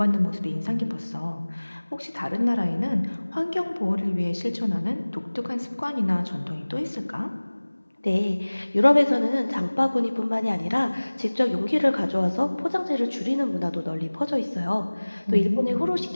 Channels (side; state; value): both; inverted; correlation -1.00